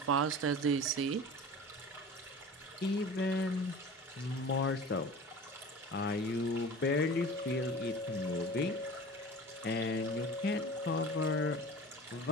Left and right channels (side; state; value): both; normal; correlation 0.37